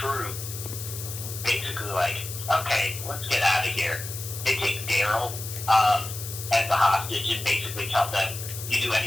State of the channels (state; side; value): noise; left; hiss, 9 dB below the sound